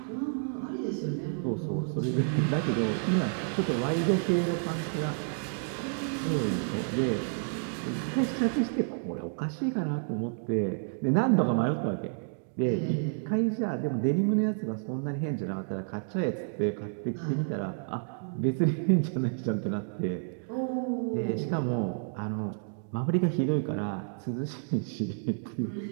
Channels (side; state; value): left; silent; digital silence